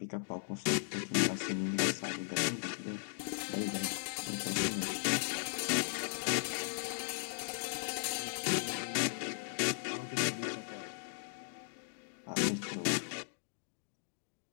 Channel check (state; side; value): silent; right; digital silence